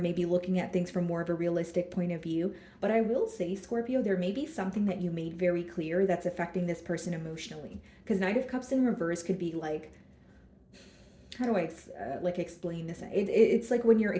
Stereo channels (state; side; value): identical; both; correlation 1.00